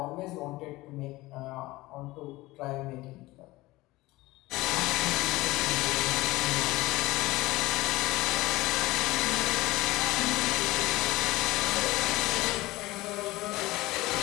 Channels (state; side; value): quieter; right; 19.5 dB